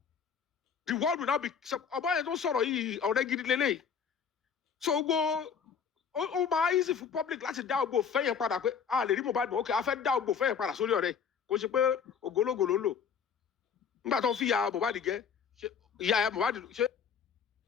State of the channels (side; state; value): right; quieter; 6.8 dB